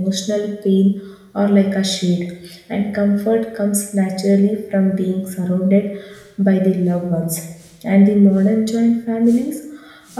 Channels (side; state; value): both; identical; correlation 1.00